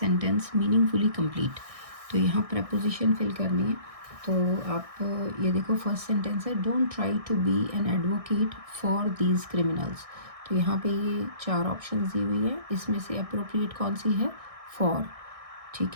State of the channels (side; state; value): left; late; 1.6 ms